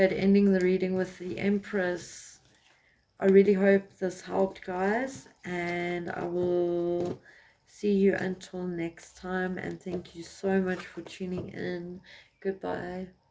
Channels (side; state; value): both; identical; correlation 1.00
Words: ending the reading with the Empress. I really hope this helped, guys, and I will see you until next time, and thank you so much for tuning in. Goodbye.